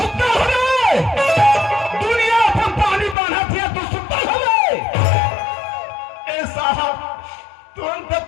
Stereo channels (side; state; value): right; drops out; at 3.2 s